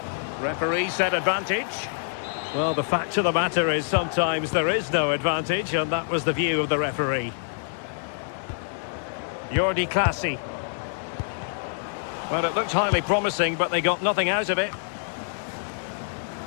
Referee said advantage. Well, the fact of the matter is sometimes there is no advantage, and that was the view of the referee. Jordi Clasie. Well, it looked highly promising, but they got nothing out of it.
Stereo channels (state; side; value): silent; right; 61 dB below the other